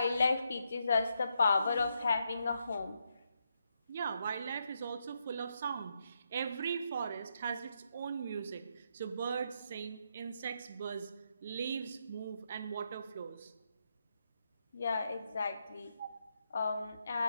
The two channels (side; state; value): both; inverted; correlation -0.80